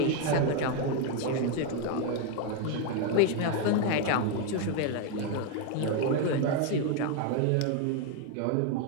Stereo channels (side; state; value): both; different; correlation 0.01